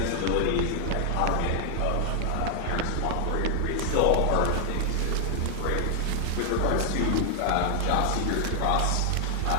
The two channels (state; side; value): different; both; correlation 0.00